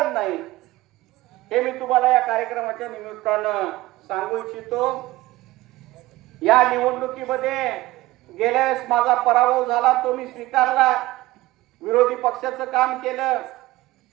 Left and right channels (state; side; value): quieter; left; 18.1 dB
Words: नाही हे मी तुम्हाला या कार्यक्रमाच्या निमित्तानं सांगू इच्छितो. या निवडणुकीमध्ये गेल्या वेळेस माझा पराभव झाला, तो मी स्वीकारला. विरोधी पक्षाचं काम केलं,